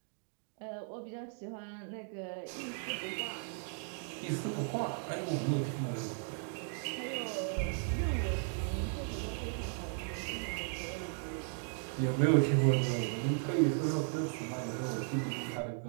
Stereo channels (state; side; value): silent; left; 54 dB below the other